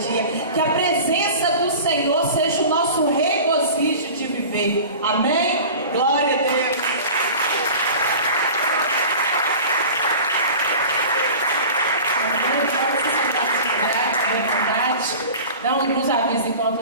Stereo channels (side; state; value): both; inverted; correlation -0.38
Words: Que a presença do Senhor seja o nosso regozijo de viver. Amém? Glória a Deus. Dá uns avisos enquanto